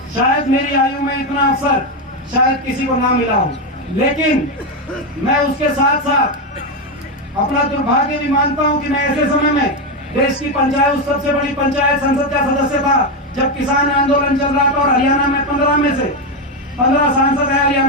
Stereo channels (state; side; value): normal; both; correlation 0.09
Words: शायद मेरी आयु में इतना अवसर शायद किसी को ना मिला हो, लेकिन मैं उसके साथ साथ अपना दुर्भाग्य भी मानता हूं कि मैं ऐसे समय में देश की पंचायत, सबसे बड़ी पंचायत संसद का सदस्य था जब किसान आंदोलन चल रहा था, और हरियाणा में 15 में से 15 सांसद है